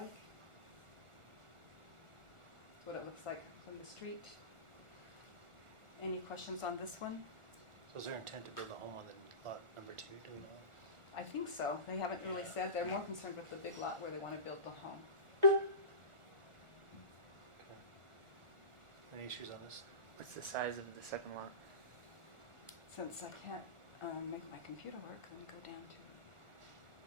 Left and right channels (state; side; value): late; left; 1.4 ms